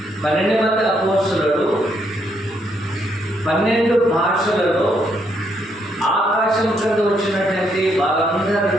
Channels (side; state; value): both; normal; correlation 0.74